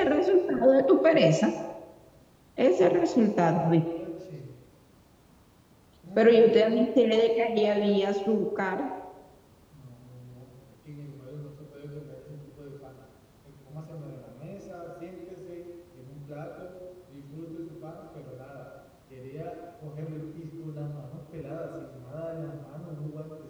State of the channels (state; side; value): identical; both; correlation 1.00